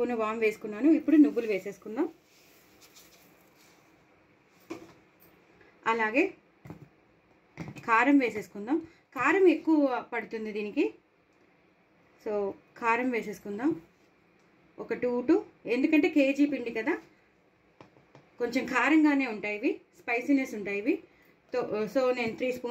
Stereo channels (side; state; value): both; identical; correlation 1.00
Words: వామ్ వేసుకున్నాను. ఇప్పుడు నువ్వులు వేసేసుకుందాం. అలాగే కారం వేసేసుకుందాం. కారం ఎక్కువ పడుతుంది దీనికి, సో కారం వేసేసుకుందాం. ఒక 2 ఎందుకంటే కేజీ పిండి కదా, కొంచెం కారంగానే ఉంటాయి ఇవి, స్పైసీనెస్ ఉంటాయి ఇవి. సో నేను 3